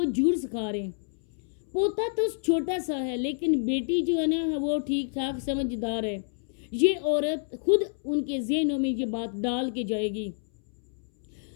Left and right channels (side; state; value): right; silent; 59 dB below the other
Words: झूठ सिखा रहे हैं। पोता तो छोटा सा है लेकिन बेटी जो है ना वो ठीक ठाक समझदार है। ये औरत खुद उनके ज़हनों में ये बात डाल के जाएगी।